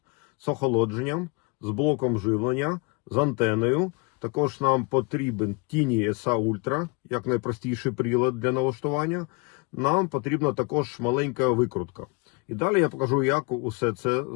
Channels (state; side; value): quieter; right; 31.0 dB